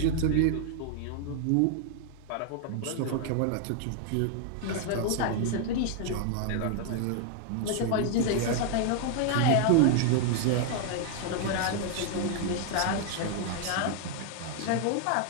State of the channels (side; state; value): both; different; correlation 0.00